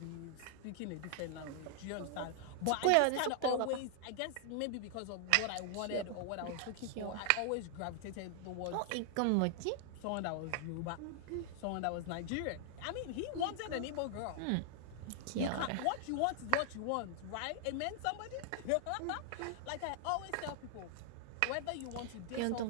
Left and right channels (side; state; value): both; different; correlation 0.00